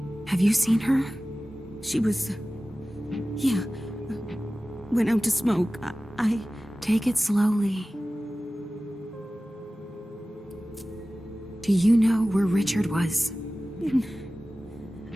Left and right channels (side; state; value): both; normal; correlation 0.96